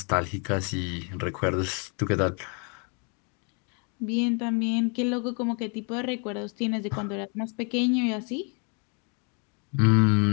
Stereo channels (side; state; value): right; quieter; 36.3 dB